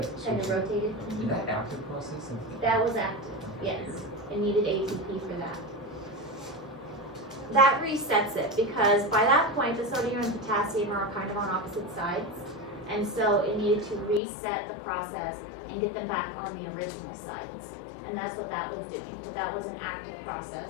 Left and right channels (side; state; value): right; drops out; at 14.2 s